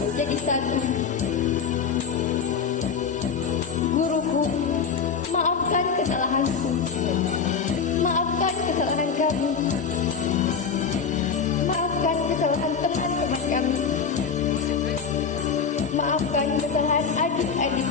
jadi satu. Guruku, maafkan kesalahanku. Maafkan kesalahan kami. Maafkan kesalahan teman-teman kami. Maafkan kesalahan adik-adik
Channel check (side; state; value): right; quieter; 6.0 dB